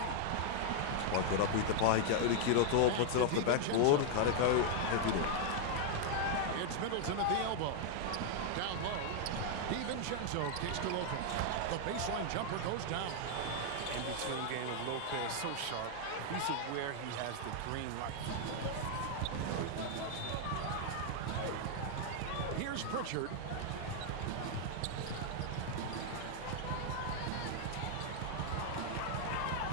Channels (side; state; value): both; different; correlation 0.00